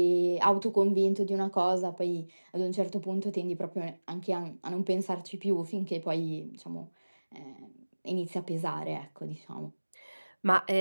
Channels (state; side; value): inverted; both; correlation -1.00